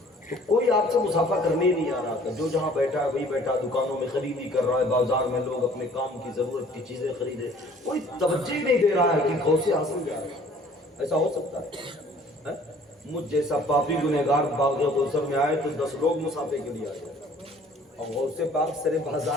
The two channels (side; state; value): both; normal; correlation 0.54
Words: تو کوئی آپ سے مسافہ کرنے ہی نہیں آ رہا تھا، جو جہاں بیٹھا ہے وہی بیٹھا، دکانوں میں خریدی کر رہا ہے، بازار میں لوگ اپنے کام کی ضرورت کی چیزیں خریدے، کوئی توجہ نہیں دے رہا ہے کہ غوث اعظم جا رہا ہے۔ ایسا ہو سکتا ہے؟ مجھ جیسا پاپی گنہگار باغ کوثر میں آئے تو 10 لوگ مسافے کے لیے آئے، اور غوث پاک سرے